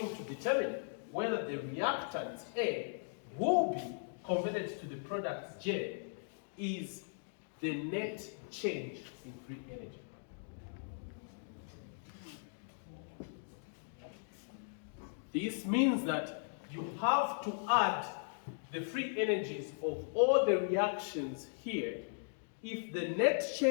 to determine whether the reactant A will be converted to the product J is the net change in free energy. This means that you have to add the free energies of all the reactions here. If the net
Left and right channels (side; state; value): right; silent; digital silence